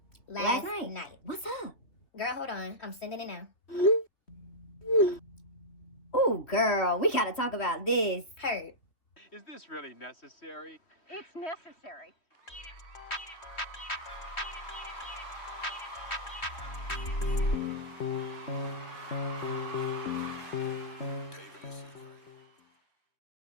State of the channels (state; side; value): late; right; 3.1 ms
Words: Last night. What's up? Girl, hold on. I'm sending it now. Ooh, girl, we gotta talk about this. Heard. Is this really necessary? It's necessary.